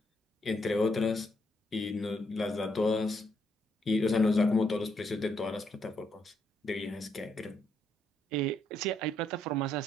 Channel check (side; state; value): both; normal; correlation 0.75